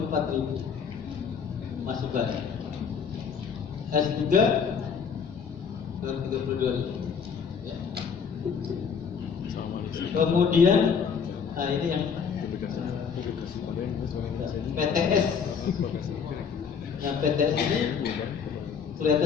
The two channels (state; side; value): quieter; right; 6.5 dB